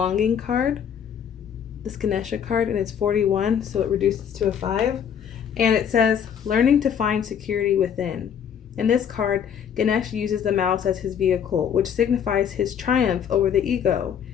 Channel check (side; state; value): right; quieter; 8.2 dB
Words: card, this Ganesha card, and it's 41, so it reduces to a 5. And it says, learning to find security within. In this card, Ganesh uses the mouse as his vehicle, which signifies his triumph over the ego.